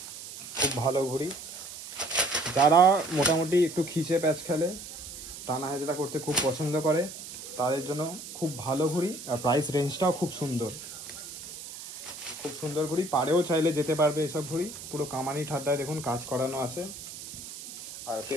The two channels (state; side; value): noise; right; hiss, 12 dB below the sound